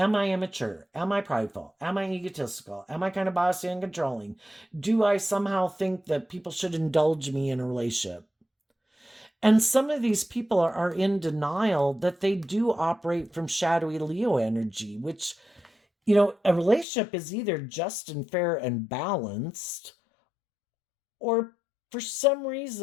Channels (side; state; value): right; drops out; at 16.9 s